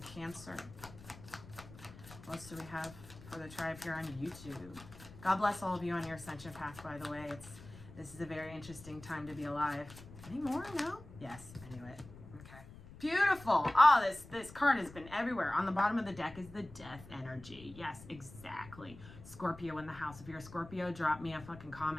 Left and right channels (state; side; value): noise; left; rumble, 17 dB below the sound